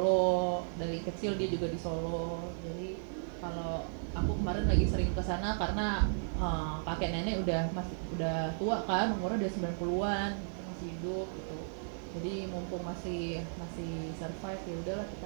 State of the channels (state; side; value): silent; left; digital silence